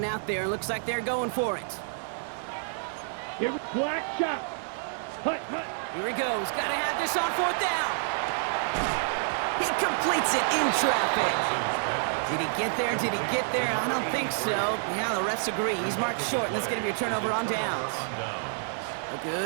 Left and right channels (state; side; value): silent; left; 59 dB below the other